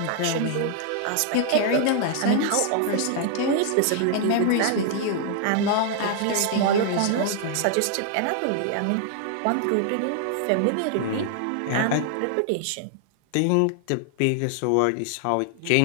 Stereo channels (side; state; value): both; different; correlation 0.00